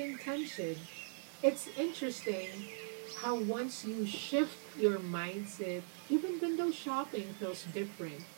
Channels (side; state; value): left; silent; digital silence